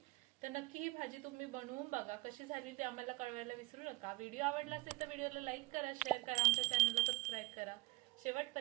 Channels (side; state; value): left; quieter; 22.4 dB